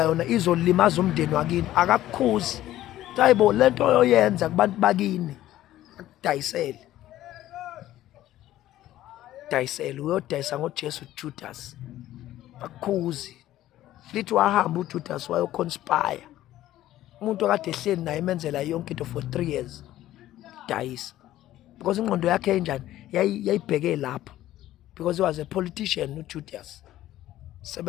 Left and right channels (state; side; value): quieter; right; 14.0 dB